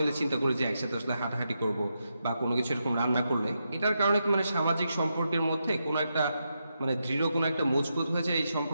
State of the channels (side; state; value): both; inverted; correlation -0.85